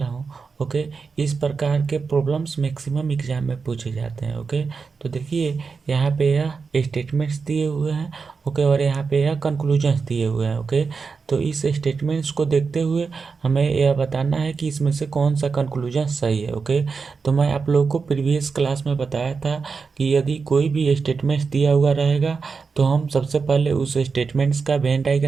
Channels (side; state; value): left; quieter; 5.0 dB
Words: हूँ, ओके। इस प्रकार के प्रॉब्लम्स मैक्सिमम एग्जाम में पूछे जाते हैं, ओके। तो देखिए यहाँ पे यह स्टेटमेंट्स दिए हुए हैं, ओके, और यहाँ पे यह कंक्लूजन्स दिए हुए हैं, ओके। तो इस स्टेटमेंट्स को देखते हुए हमें यह बताना है कि इसमें से कौन सा कंक्लूजन सही है, ओके। तो मैं आप लोगों को प्रीवियस क्लास में बताया था कि यदि कोई भी स्टेटमेंट्स दिया हुआ रहेगा तो हम सबसे पहले उस स्टेटमेंट्स का वेन